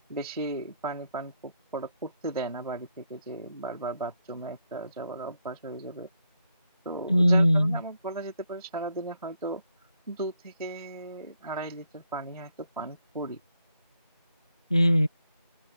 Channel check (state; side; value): inverted; both; correlation -0.78